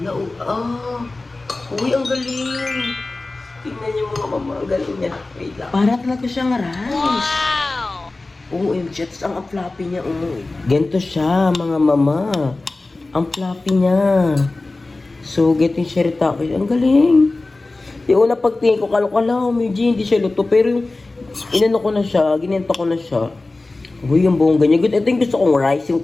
uy, ang galing. Tingnan niyo mga mama, ang galing niya. Wait lang. Para talaga siyang rice. Wow! OMG, ang floppy niya, Ganito siya, mga mama. Ang floppy niya. So, getting shirataki. Ang galing. Yung una pagtingin ko, kala medyo hindi siya luto. Pero yung inano ko na siya, ginenta ko na siya. Uy, yung buong ganyan. Ito yung gusto kong rice,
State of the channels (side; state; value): right; quieter; 3.2 dB